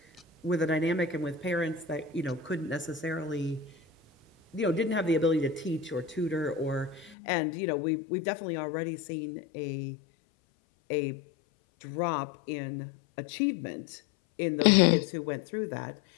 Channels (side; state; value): right; drops out; at 7.2 s